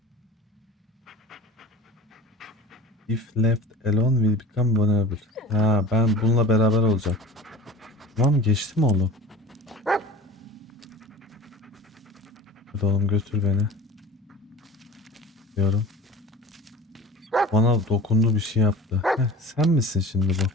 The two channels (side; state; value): both; normal; correlation 0.39